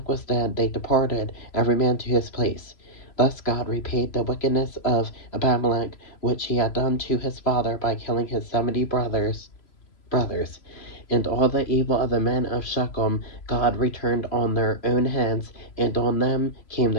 was dead, they departed, every man to his place. Thus God repaid the wickedness of Abimelech, which he had done to his father by killing his 70 brothers. And all the evil of the men of Shechem God returned on their own heads, and on them came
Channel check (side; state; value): right; late; 3.0 ms